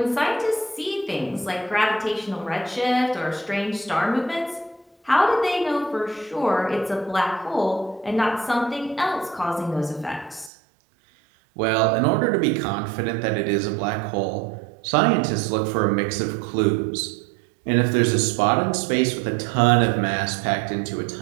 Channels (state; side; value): drops out; left; at 10.5 s